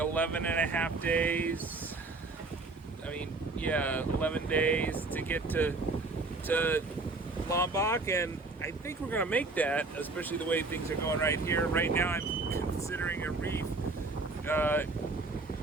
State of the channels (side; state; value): left; quieter; 3.5 dB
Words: and a half days. I mean, yeah, 11 days to get to Lombok, and I think we're going to make that, especially the way things are going right here. Right now I'm considering a reef.